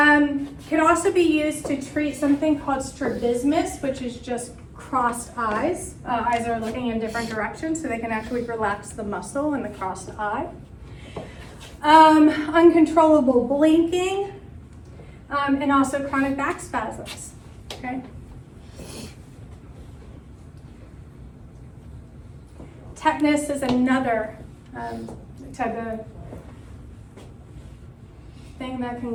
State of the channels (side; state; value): both; identical; correlation 1.00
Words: also be used to treat something called strabismus, which is just crossed eyes. Eyes are looking in different directions, so they can actually relax the muscle in the crossed eye. Uncontrollable blinking, and also chronic back spasms, okay? Tetanus is another type of thing that